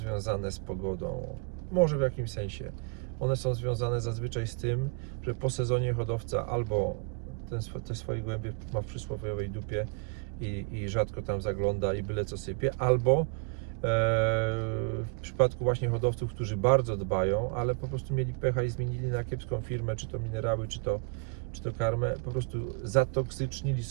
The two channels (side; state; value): left; quieter; 34.4 dB